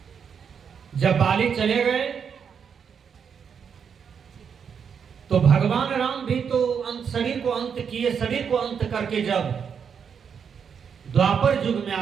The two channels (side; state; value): left; quieter; 7.0 dB